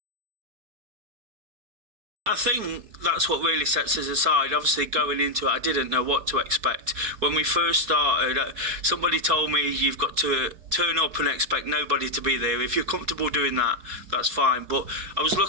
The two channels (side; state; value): left; late; 4.6 ms